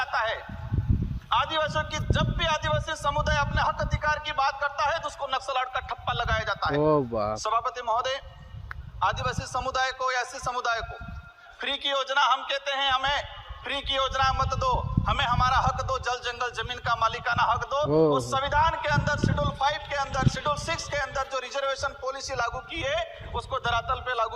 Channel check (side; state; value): both; identical; correlation 1.00